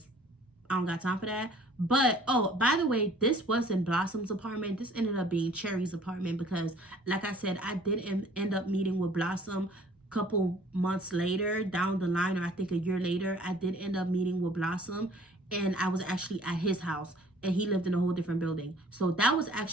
I don't got time for that. But, oh, by the way, this wasn't Blossom's apartment. This ended up being Cherry's apartment because, like I said, I did end up meeting with Blossom a couple months later down the line, or I think a year later. I did end up meeting with Blossom, and I was actually at his house, and he lived in a whole different building. So that was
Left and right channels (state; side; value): normal; both; correlation 0.54